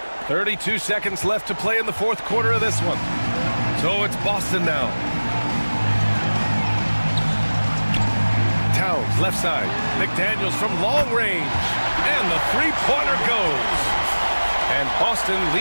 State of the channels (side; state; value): both; inverted; correlation -1.00